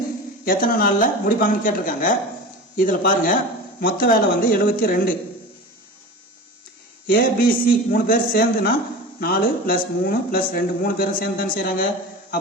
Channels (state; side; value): normal; both; correlation 0.32